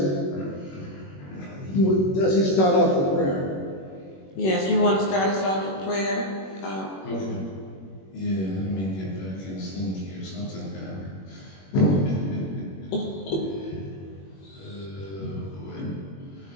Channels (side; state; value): right; late; 21 ms